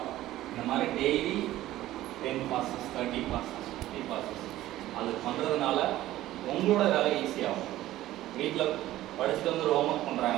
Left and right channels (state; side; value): quieter; left; 15.0 dB